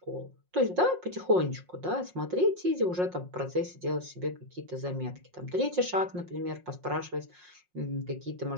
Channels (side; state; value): left; late; 5.6 ms